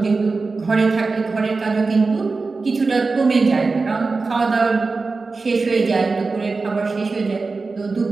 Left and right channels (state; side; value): quieter; left; 4.0 dB